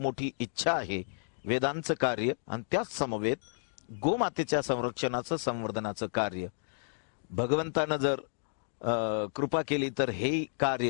इच्छा आहे. वेदांचं कार्य आणि त्याच समवेत गोमातेच्या संरक्षणाचं संवर्धनाचं कार्य भगवंतानं जर कृपा केली तर हे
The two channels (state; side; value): silent; right; digital silence